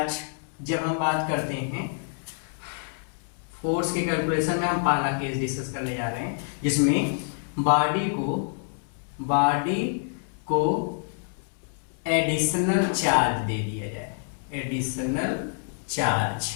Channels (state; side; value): silent; right; 60 dB below the other